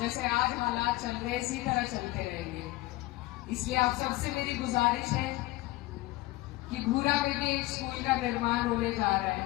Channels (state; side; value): quieter; right; 18.7 dB